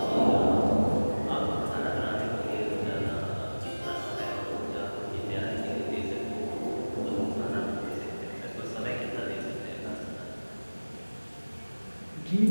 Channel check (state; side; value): inverted; both; correlation -1.00